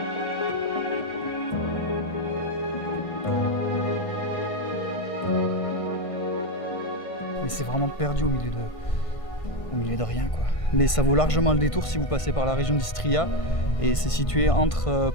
Mais c'est vraiment perdu au milieu de rien quoi. Mais ça vaut largement le détour si vous passez par la région d'Istria et c'est situé entre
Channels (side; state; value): right; late; 1.5 ms